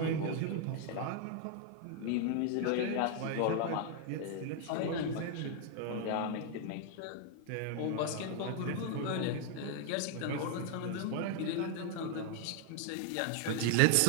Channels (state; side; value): different; both; correlation 0.00